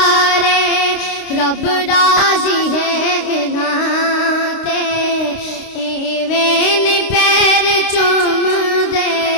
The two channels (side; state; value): right; late; 29 ms